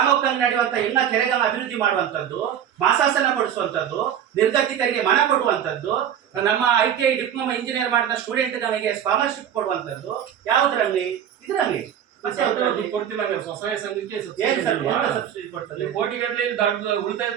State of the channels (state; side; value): quieter; left; 9.5 dB